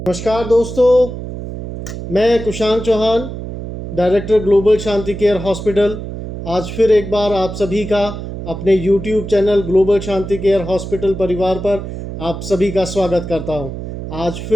नमस्कार दोस्तों, मैं कुशांक चौहान, डायरेक्टर ग्लोबल शांति केयर हॉस्पिटल। आज फिर एक बार आप सभी का अपने YouTube चैनल ग्लोबल शांति केयर हॉस्पिटल परिवार पर आप सभी का स्वागत करता हूं। आज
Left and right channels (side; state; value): right; noise; hum, 8 dB below the sound